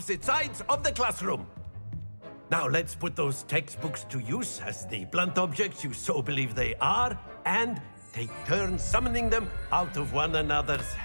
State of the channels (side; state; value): both; inverted; correlation -1.00